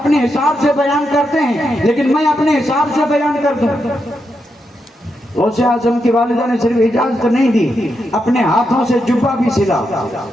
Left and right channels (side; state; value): both; normal; correlation 0.84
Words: حساب سے بیان کرتے ہیں, لیکن میں اپنے حساب سے بیان کر دوں. غوث اعظم کی والدہ نے صرف اجازت نہیں دی, اپنے ہاتھوں سے جبہ بھی سلا.